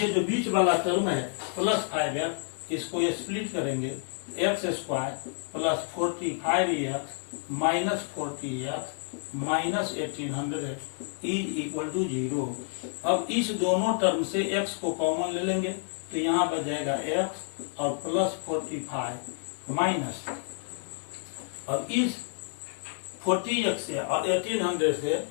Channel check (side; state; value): right; silent; 58 dB below the other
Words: जो बीच वाला टर्म है प्लस 5x, इसको स्प्लिट करेंगे, x square plus 45x minus 40x minus 1800 is equal to 0। अब इस दोनों टर्म से x को कॉमन ले लेंगे, तो यहाँ बच जाएगा x और प्लस 45 माइनस, अब इस 40x से और 1800 से